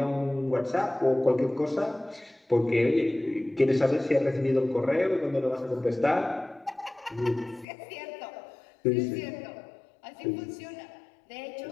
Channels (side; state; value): right; drops out; at 7.7 s